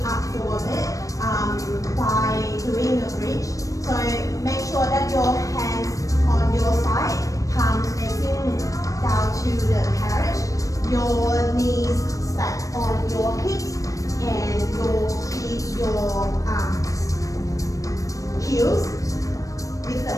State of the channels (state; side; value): late; right; 0.16 ms